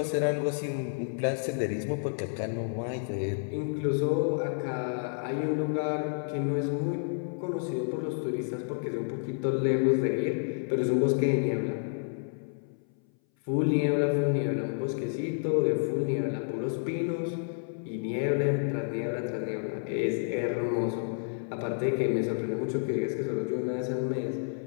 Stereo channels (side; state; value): right; silent; 57 dB below the other